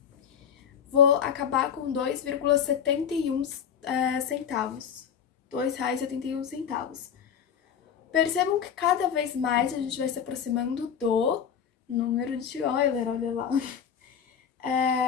Vou acabar com 2,71 centavos. R$2,71. Percebam que cada vez mais a gente vai se aproximando do número de Euler, olha lá.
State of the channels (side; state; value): right; quieter; 8.0 dB